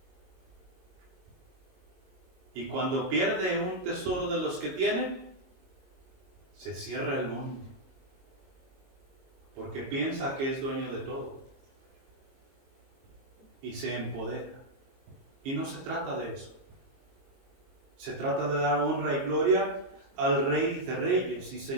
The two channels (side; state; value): left; late; 22 ms